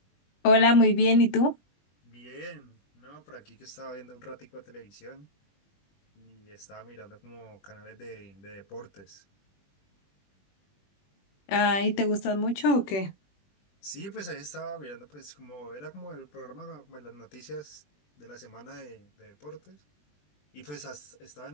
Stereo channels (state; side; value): late; right; 20 ms